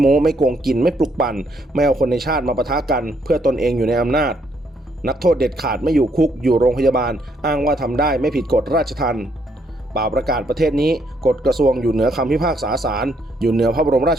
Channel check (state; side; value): normal; both; correlation 0.72